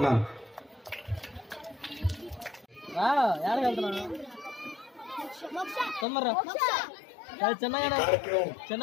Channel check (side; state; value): right; drops out; at 6.1 s